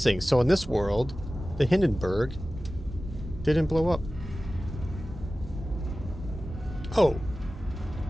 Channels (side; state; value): both; normal; correlation 0.96